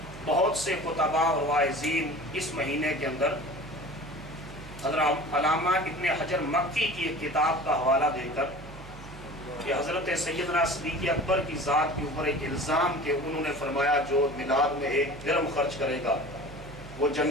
بہت سے خطباء اور واعظین اس مہینے کے اندر حضرت علامہ ابن حجر مکی کی ایک کتاب کا حوالہ دے کر کہ حضرت سیدنا صدیق اکبر کی ذات کے اوپر ایک الزام کہ انہوں نے فرمایا جو میلاد میں ایک درم خرچ کرے گا وہ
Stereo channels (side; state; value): right; noise; hum, 16 dB below the sound